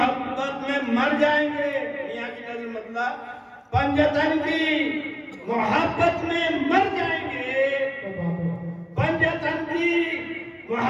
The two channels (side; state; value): both; identical; correlation 1.00